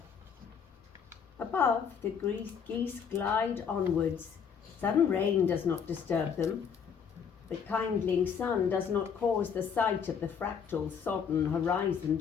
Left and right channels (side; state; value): right; quieter; 6.9 dB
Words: Above, the geese glide onwards. Sudden rain does not disturb them. The kindling sun does not cause the sight of the fractal, sodden horizon